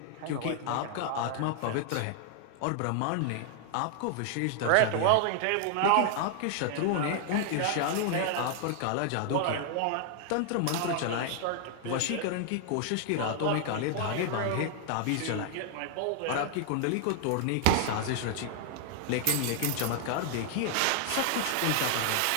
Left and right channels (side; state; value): both; different; correlation 0.00